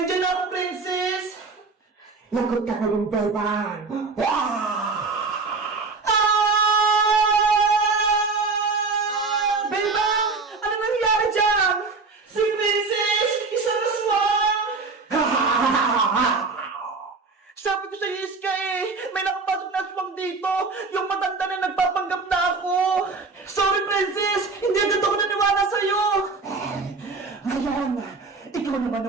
na ako, Princess! Lagot ka na yung Bebang. Bebang! Ano nangyari dyan? Si Princess! Isang aswang! Sabi ko sa Iska eh! May nakapasok na aswang dito! Yung matanda na nagpapanggap na ako! Sorry, Princess! Hindi agad ako naniwala sa'yo! Ngayon, ikaw naman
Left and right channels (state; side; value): quieter; left; 4.2 dB